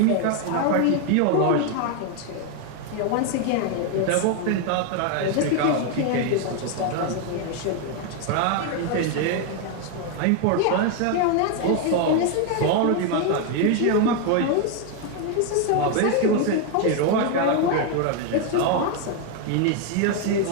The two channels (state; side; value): different; both; correlation 0.01